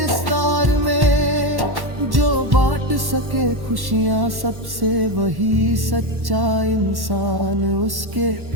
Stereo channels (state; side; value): late; left; 1.1 ms